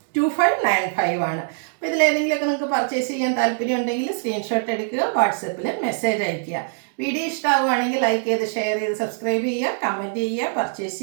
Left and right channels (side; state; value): left; silent; digital silence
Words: 2595 ആണ്. അപ്പോൾ ഇതിലേതെങ്കിലുമൊക്കെ നിങ്ങൾക്ക് പർച്ചേസ് ചെയ്യാൻ താല്പര്യം ഉണ്ടെങ്കിൽ സ്ക്രീൻഷോട്ട് എടുക്കുക, വാട്സപ്പിൽ മെസ്സേജ് അയയ്ക്കുക. വീഡിയോ ഇഷ്ടമാവുകയാണെങ്കിൽ ലൈക്ക് ചെയ്ത് ഷെയർ ചെയ്ത് സബ്സ്ക്രൈബ് ചെയ്യുക, കമൻറ്റ് ചെയ്യുക, പർച്ചേസ്